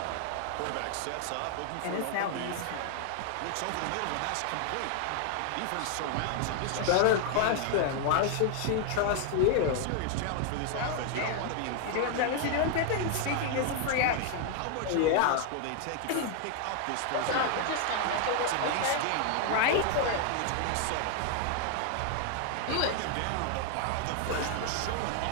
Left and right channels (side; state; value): both; different; correlation 0.00